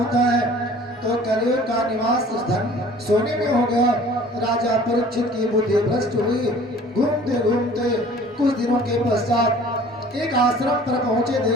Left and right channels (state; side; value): normal; both; correlation 0.49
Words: है। तो कलियुग का निवास धन सोने में हो गया। राजा परीक्षित की बुद्धि भ्रष्ट हुई। घूमते घूमते कुछ दिनों के पश्चात एक आश्रम पर पहुंचे,